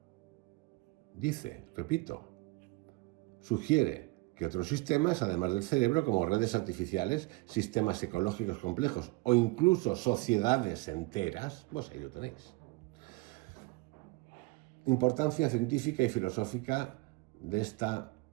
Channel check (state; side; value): quieter; left; 24.2 dB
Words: Sugiere que otros sistemas, además del cerebro, como redes artificiales, sistemas ecológicos complejos o incluso sociedades enteras, pues ahí lo tenéis. Importancia científica y filosófica de esta